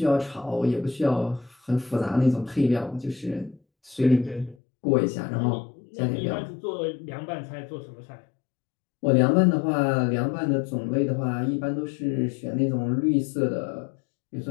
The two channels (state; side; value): drops out; right; at 4.5 s